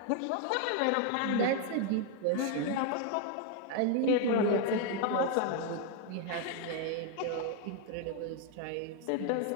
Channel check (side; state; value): both; different; correlation 0.00